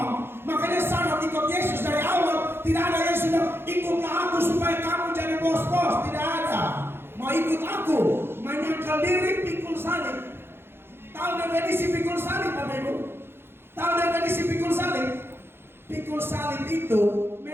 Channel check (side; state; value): left; late; 0.11 ms